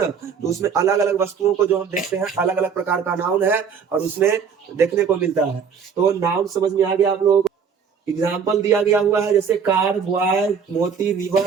तो उसमें अलग अलग वस्तुओं को जो हम देखते हैं, अलग अलग प्रकार का नाउन है और उसमें देखने को मिलता है। तो नाउन समझ में आ गया आप लोगों को? एग्जाम्पल दिया गया हुआ है, जैसे कार, बॉय, मोती,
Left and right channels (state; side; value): quieter; left; 6.5 dB